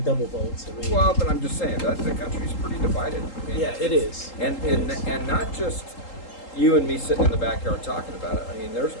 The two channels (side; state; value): right; late; 3.8 ms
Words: double votes. Well, but I'm just saying that the country's pretty divided. I mean, yeah, it is. And not just you and me sitting in the backyard talking about it. I mean, there's